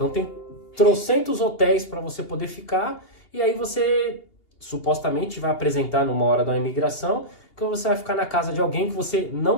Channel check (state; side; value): late; right; 2.8 ms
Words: tem trocentos hotéis para você poder ficar, e aí você supostamente vai apresentar numa hora da imigração que você vai ficar na casa de alguém que você